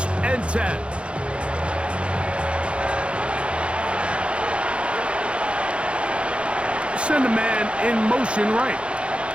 and 10. Send a man in motion right.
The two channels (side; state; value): left; late; 0.059 ms